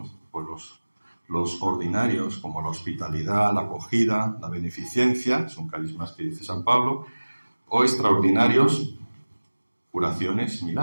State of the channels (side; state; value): both; inverted; correlation -1.00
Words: pues los ordinarios, como la hospitalidad, la acogida, la beneficencia, son carismas que dice San Pablo, o extraordinarios, curaciones,